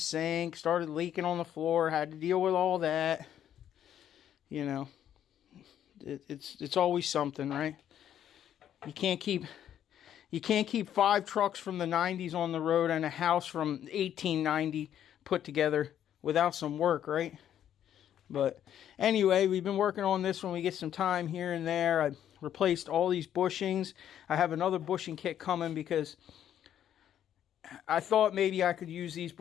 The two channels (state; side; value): quieter; right; 10.3 dB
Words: started leaking on the floor, had to deal with all that. You know, it's always something, right? You can't keep 5 trucks from the 90s on the road and a house from 1890 put together without some work, right? But anyway, we've been working on this when we get some time here and there. I replaced all these bushings. I have another bushing kit coming because I thought maybe I could use these